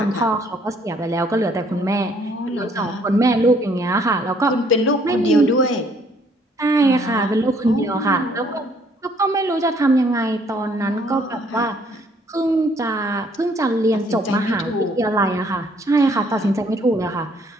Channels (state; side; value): normal; both; correlation 0.64